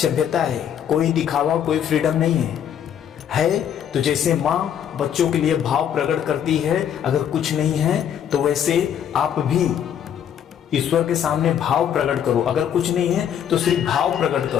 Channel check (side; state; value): right; quieter; 9.2 dB